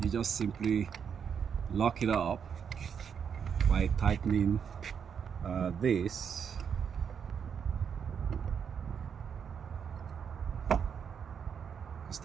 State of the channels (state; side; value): quieter; left; 7.2 dB